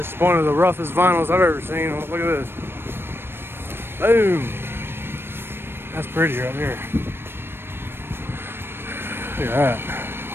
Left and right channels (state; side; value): late; left; 0.11 ms